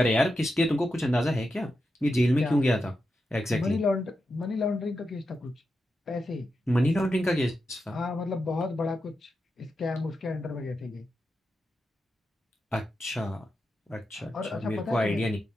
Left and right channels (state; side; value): normal; both; correlation 0.88